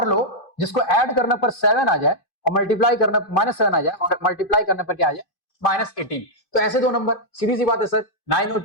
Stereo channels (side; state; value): right; late; 2.5 ms